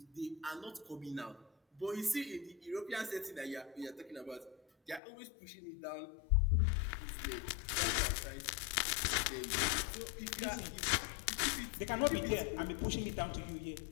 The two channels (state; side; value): drops out; right; at 5.0 s